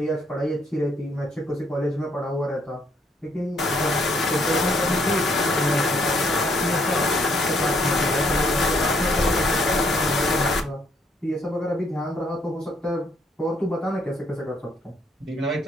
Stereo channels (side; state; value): both; normal; correlation 0.69